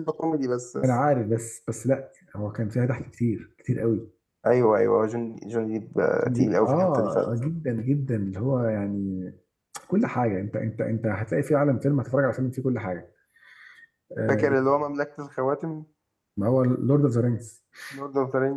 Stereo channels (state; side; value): identical; both; correlation 1.00